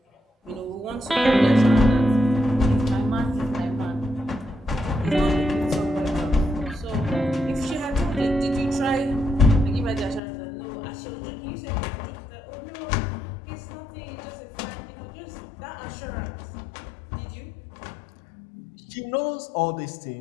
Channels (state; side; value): drops out; right; at 10.2 s